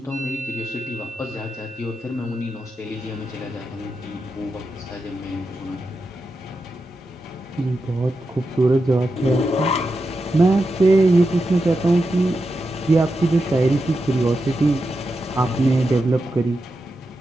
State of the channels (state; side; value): normal; both; correlation 0.88